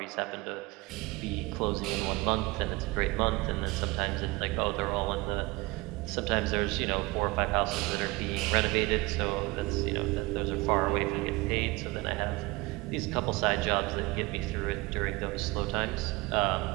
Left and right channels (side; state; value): left; quieter; 23.1 dB